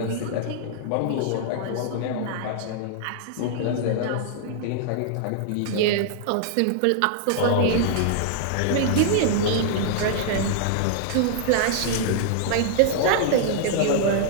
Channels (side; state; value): both; different; correlation -0.01